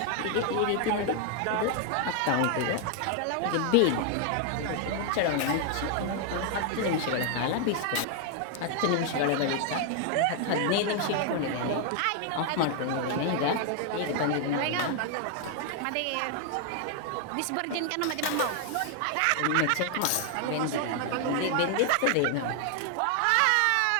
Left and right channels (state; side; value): different; both; correlation 0.00